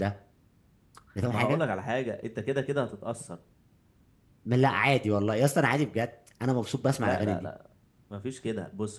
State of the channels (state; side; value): identical; both; correlation 1.00